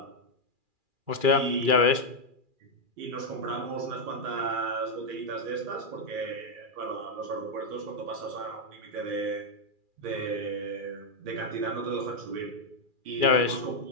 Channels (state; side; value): late; left; 2.4 ms